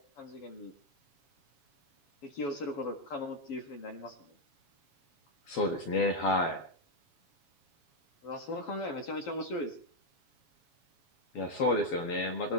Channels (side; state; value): right; late; 7.2 ms